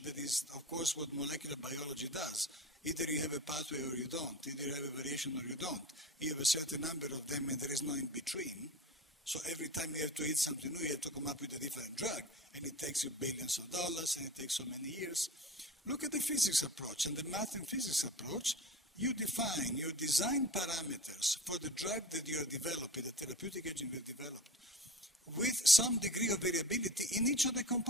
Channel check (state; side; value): normal; both; correlation 0.33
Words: that is, of course, what molecular biology does, either you have a pathway or you don't, either you have a variation or you don't, you have a certain number of them and there is no in between, so every time you have to hit something new, you have to come up with a different drug, and it takes you billions of dollars, and it takes so many years. Look at the physics approach and the math and physics approach. You define your design parameters for the drug that you are developing, the therapeutic agent you have developed, with some degree of variability in each of the